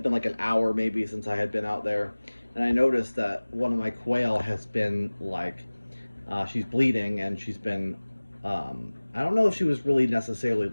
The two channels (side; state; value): both; inverted; correlation -1.00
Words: been like an hour maybe since I had been out there, and I noticed that one of my quail has been like she's bleeding, and she's been I don't know if she was really necessarily